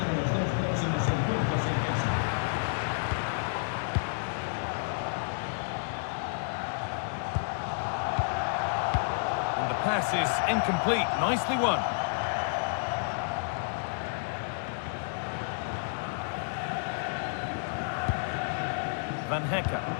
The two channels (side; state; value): right; silent; digital silence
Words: Pass is incomplete. Nicely won. Van Hecker.